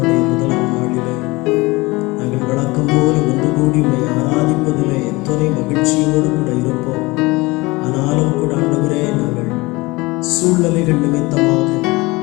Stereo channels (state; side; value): quieter; right; 22.9 dB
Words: முதலாம் நாளிலே நாங்கள் வழக்கம் போல ஒன்று கூடி உம்மை ஆராதிப்பதிலே எத்தனை மகிழ்ச்சியோடு கூட இருப்போம். ஆனாலும் கூட ஆண்டவரே, நாங்கள் சூழ்நிலைகள் நிமித்தமாக